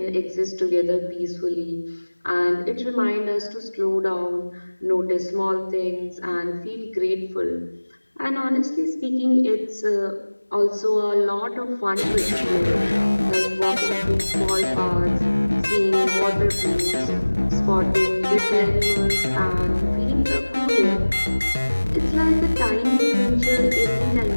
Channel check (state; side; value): inverted; both; correlation -1.00